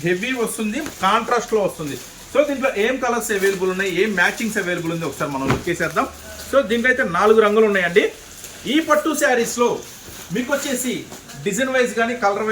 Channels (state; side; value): identical; both; correlation 1.00